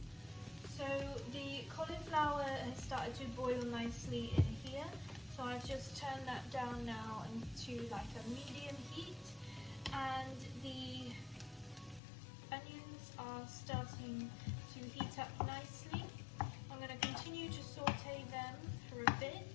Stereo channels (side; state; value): right; drops out; at 12.0 s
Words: So the cauliflower has started to boil nicely in here. So I've just turned that down now into like a medium heat, and the onions are starting to heat up nicely. I'm going to continue to saute them for a bit.